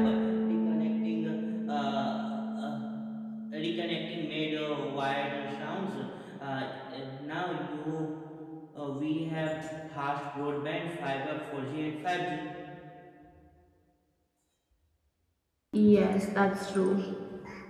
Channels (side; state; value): both; identical; correlation 1.00